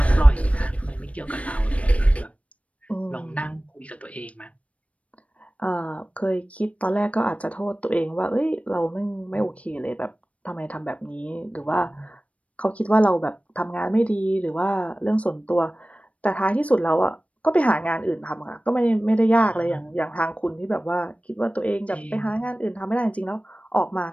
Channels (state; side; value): late; right; 0.065 ms